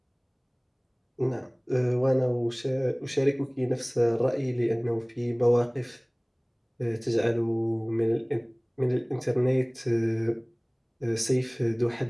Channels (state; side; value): identical; both; correlation 1.00